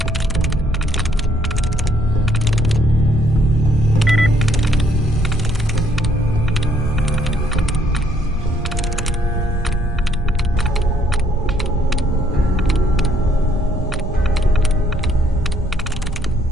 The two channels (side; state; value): both; normal; correlation 0.68